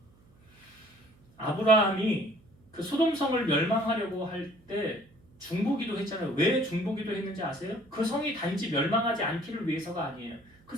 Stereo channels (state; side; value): noise; right; hum, 30 dB below the sound